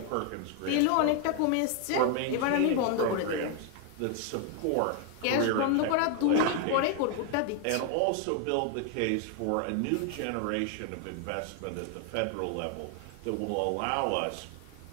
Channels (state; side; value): different; both; correlation 0.00